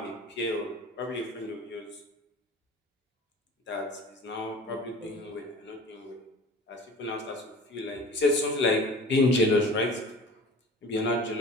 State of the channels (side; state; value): both; normal; correlation 0.42